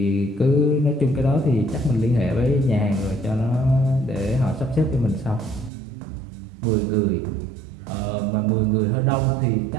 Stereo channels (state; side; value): drops out; left; at 5.7 s